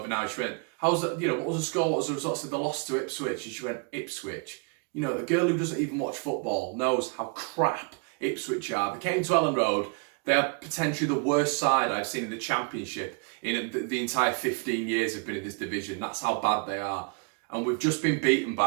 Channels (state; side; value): quieter; left; 36.4 dB